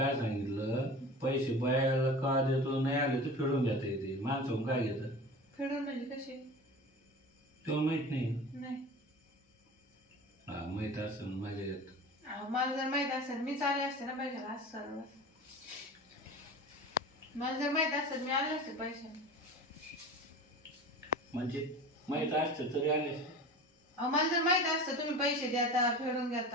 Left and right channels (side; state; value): both; normal; correlation 0.35